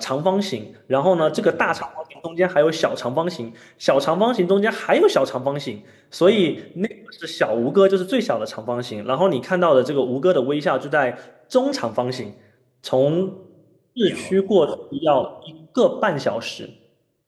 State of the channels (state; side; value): identical; both; correlation 1.00